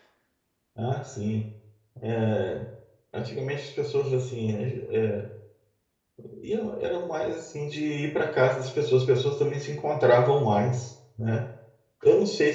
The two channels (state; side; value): identical; both; correlation 1.00